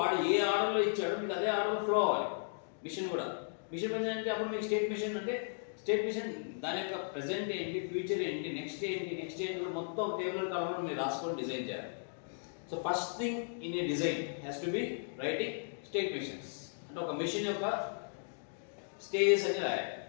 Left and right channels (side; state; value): right; silent; digital silence